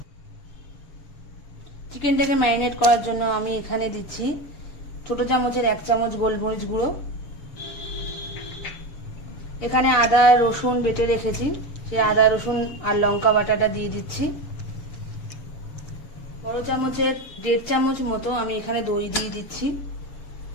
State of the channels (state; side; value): late; right; 6.7 ms